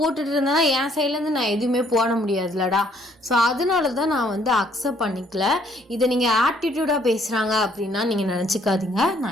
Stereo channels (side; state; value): both; normal; correlation 0.64